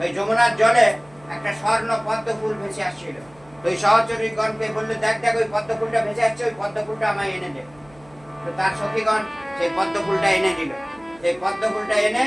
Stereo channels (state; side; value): noise; right; hum, 27 dB below the sound